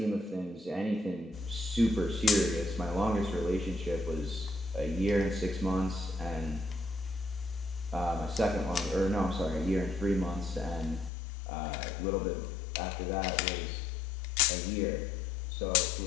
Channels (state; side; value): drops out; right; at 11.1 s